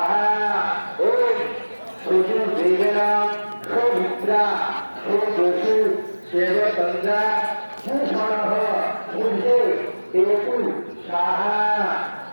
ওম সূর্য দেবেনা সৌমিত্রা সৌদসু সেবতন্দ্রা সুষণঃ সূর্য কেতু স্বাহা,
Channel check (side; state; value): both; inverted; correlation -1.00